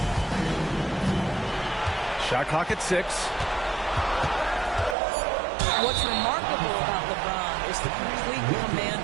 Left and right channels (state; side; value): drops out; left; at 5.0 s